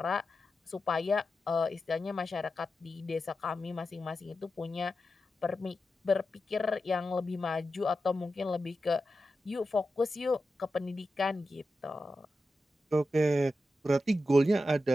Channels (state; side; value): normal; both; correlation 0.90